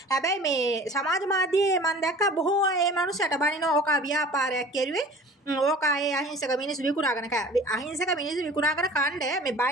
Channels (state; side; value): normal; both; correlation 0.43